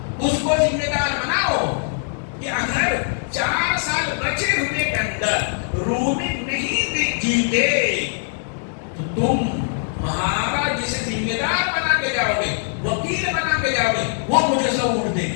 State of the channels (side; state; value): right; silent; digital silence